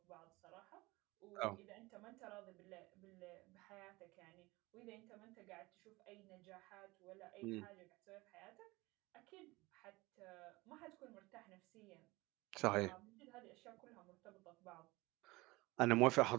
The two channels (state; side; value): quieter; left; 21.8 dB